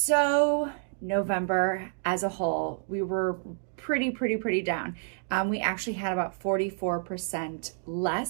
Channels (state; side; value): silent; left; digital silence